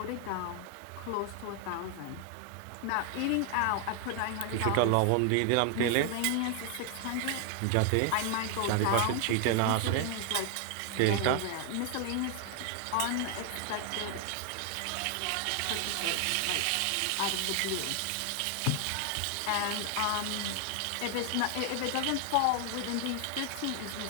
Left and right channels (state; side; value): different; both; correlation 0.00